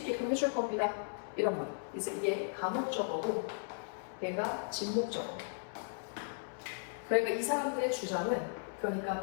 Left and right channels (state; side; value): silent; right; 54 dB below the other